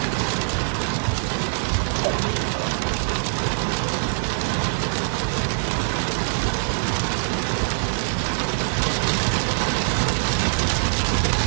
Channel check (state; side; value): silent; left; digital silence